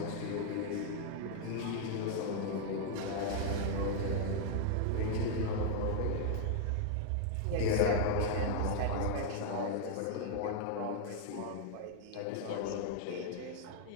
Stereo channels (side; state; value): both; different; correlation -0.01